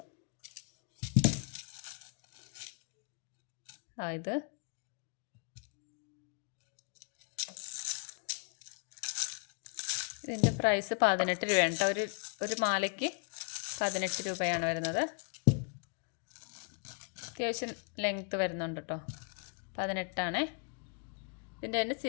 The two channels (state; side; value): quieter; right; 39.0 dB